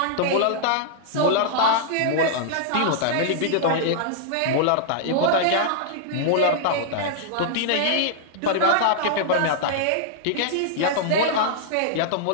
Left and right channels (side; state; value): both; different; correlation -0.01